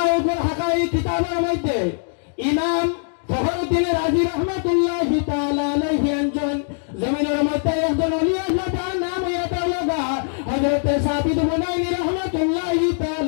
উপর হাকা এই কিতাবের মধ্যে ইমাম ফখরুদ্দিন রাজি রহমাতুল্লাহি তাআলা আলাইহি একজন জমিনের মধ্যে একজন ওলি আল্লাহ, তার নাম ইয়াতাওয়াগা হযরত সাবিত বুনাইনি রহমাতুল্লাহি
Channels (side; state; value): right; silent; digital silence